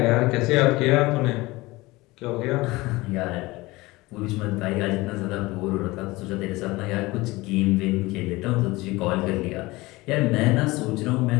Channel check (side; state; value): right; quieter; 21.1 dB